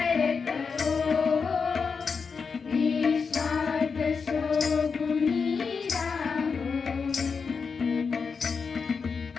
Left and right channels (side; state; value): right; quieter; 5.4 dB